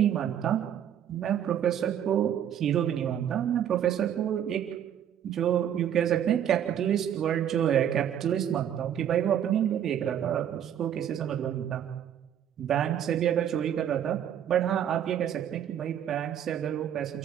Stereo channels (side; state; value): left; quieter; 9.8 dB